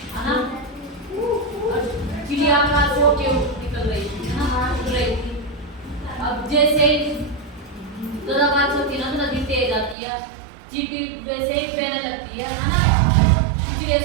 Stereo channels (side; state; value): left; drops out; at 10.0 s